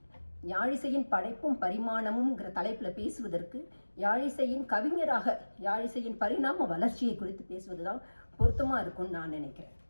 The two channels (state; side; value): inverted; both; correlation -1.00